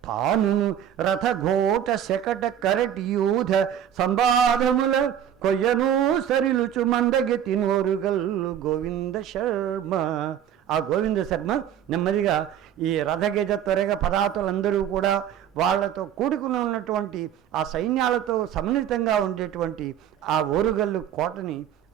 తాను రథఘోట శకట కరటి యూధ సంబాధముల కొయ్యను సరిలుచు మందగెతి నోరుగల్లు గోవింద శర్మ. ఆ గోవింద శర్మ నెమ్మదిగా ఈ రథగజ త్వరగ పదాతులందరూ కూడా వాళ్లతో కూడుకుని ఉన్నటువంటి ఆ సైన్యాలతో సమ్మిళితంగా ఉండేటువంటి ఆ ఓరుగల్లు కోటని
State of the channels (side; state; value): left; quieter; 9.9 dB